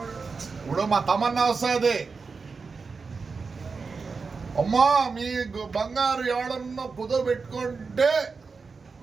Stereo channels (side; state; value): left; quieter; 4.7 dB